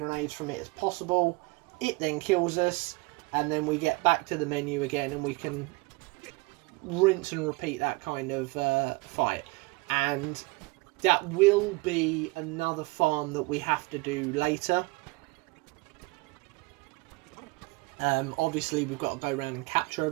from it as possible. It then kills us, and then we get back to the menu again, and we can rinse and repeat that kind of fight. And that will be another farm that we have to do later. Obviously, we've got to go around and capture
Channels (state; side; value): quieter; left; 25.2 dB